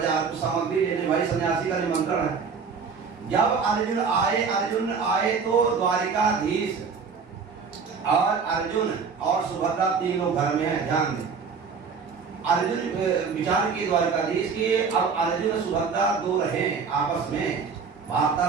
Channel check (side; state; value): left; quieter; 5.6 dB